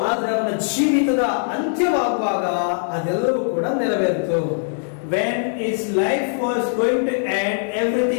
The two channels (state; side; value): silent; right; digital silence